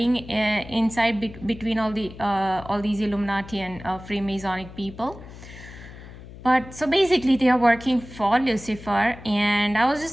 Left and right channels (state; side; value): noise; left; hum, 16 dB below the sound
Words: inside between all these Illuminati and Freemasonic people. But so basically they are working for Lucifer, and I was